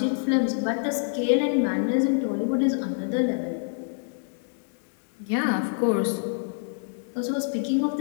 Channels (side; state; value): right; silent; digital silence